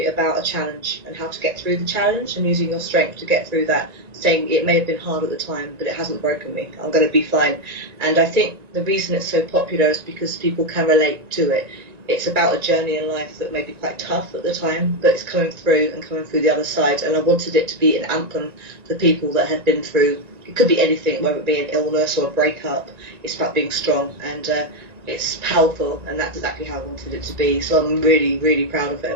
about a challenge and how to get through the challenge and using your strength to get through that, saying it may have been hard at the time, but it hasn't broken me. I'm going to be fine. And I think the reason it's so popular is because people can relate to it. It's about a journey in life that may be quite tough at the time, but it's coming through the other side. And I wanted it to be an anthem for people that had been through, it could be anything, whether it be an illness or a breakup. It's about being strong, and it's powerful, and that's exactly how I wanted it to be. So I'm really, really proud of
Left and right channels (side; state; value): left; late; 1.9 ms